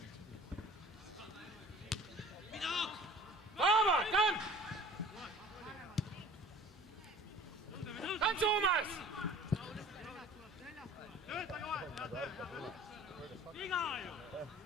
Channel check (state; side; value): normal; both; correlation 0.47